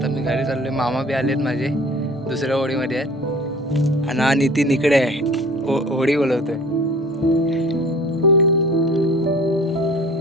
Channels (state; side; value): normal; both; correlation 0.45